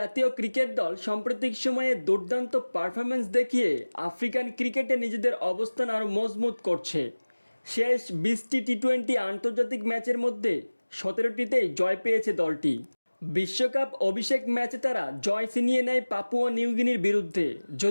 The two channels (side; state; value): both; inverted; correlation -1.00